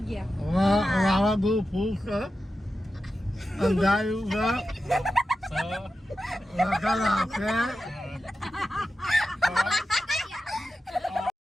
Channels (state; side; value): normal; both; correlation 0.92